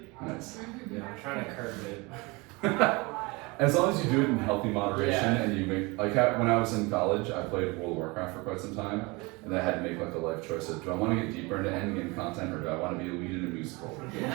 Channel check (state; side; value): quieter; left; 25.7 dB